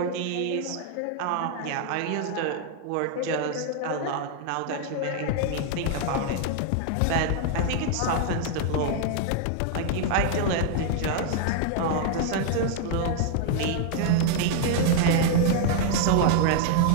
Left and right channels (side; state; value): both; different; correlation 0.00